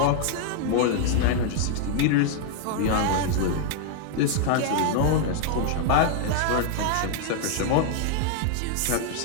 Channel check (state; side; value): different; both; correlation 0.00